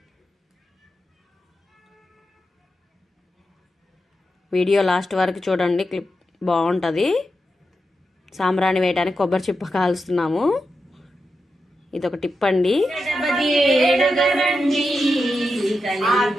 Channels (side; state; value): both; normal; correlation 0.88